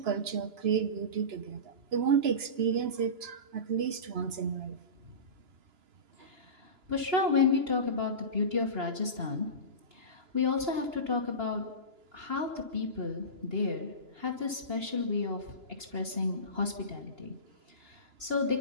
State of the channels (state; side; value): late; left; 2.9 ms